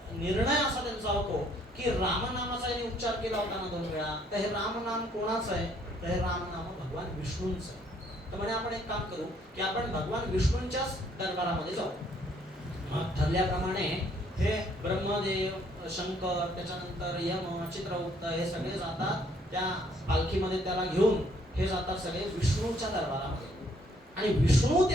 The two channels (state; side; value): normal; both; correlation 0.65